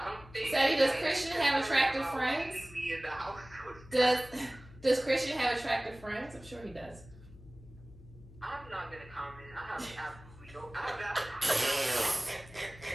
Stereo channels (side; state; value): left; noise; hum, 20 dB below the sound